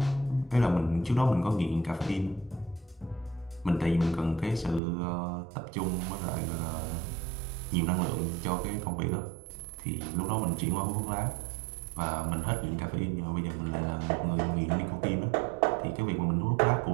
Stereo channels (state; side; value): drops out; left; at 4.8 s